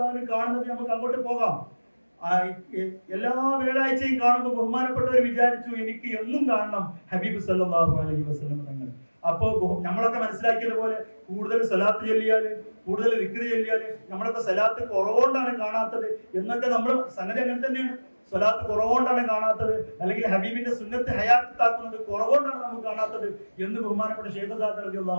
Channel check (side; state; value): both; inverted; correlation -1.00